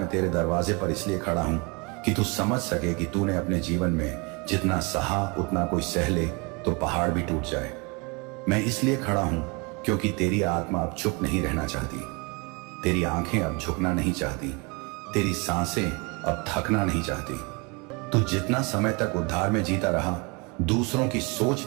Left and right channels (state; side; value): quieter; left; 28.8 dB